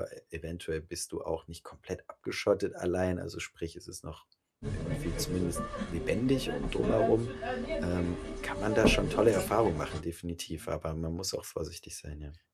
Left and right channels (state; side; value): identical; both; correlation 1.00